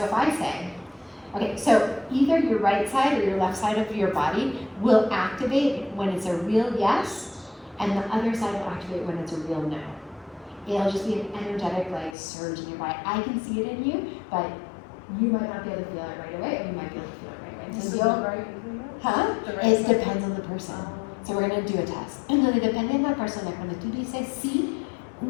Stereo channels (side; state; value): right; drops out; at 12.2 s